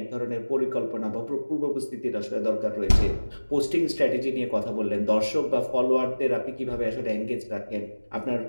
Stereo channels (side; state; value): both; inverted; correlation -1.00